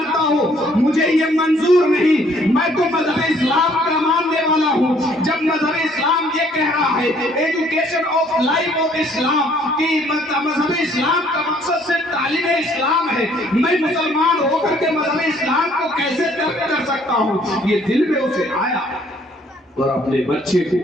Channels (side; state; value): both; normal; correlation 0.62